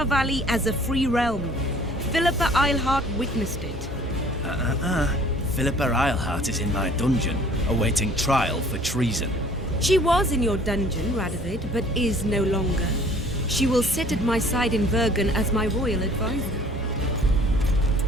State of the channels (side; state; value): both; normal; correlation 0.53